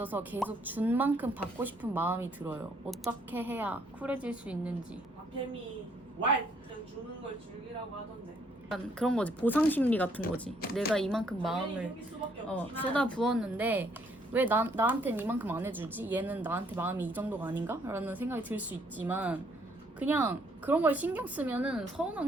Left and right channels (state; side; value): normal; both; correlation 0.67